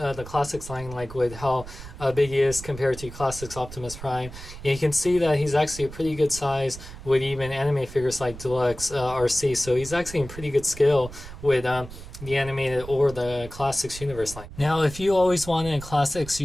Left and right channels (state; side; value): noise; right; rumble, 14 dB below the sound